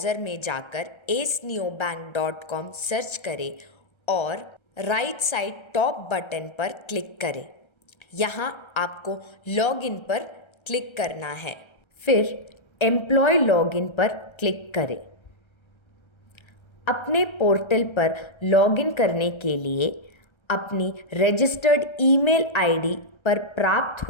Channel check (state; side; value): late; right; 1.3 ms